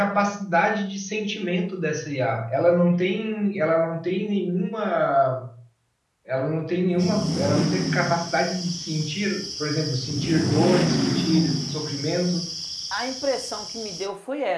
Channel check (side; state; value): both; identical; correlation 1.00